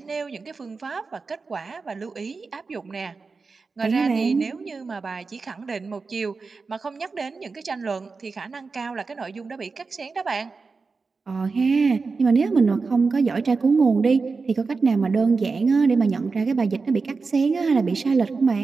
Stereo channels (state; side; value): quieter; left; 4.4 dB